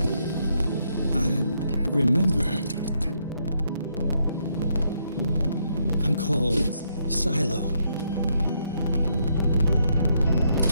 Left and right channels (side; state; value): both; inverted; correlation -0.76